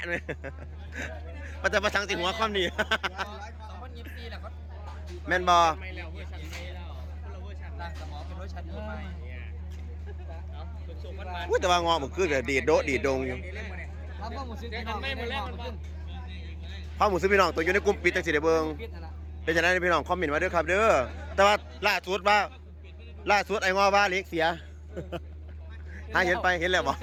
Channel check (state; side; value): identical; both; correlation 1.00